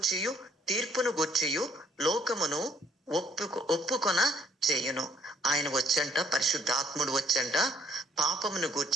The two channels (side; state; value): both; normal; correlation 0.64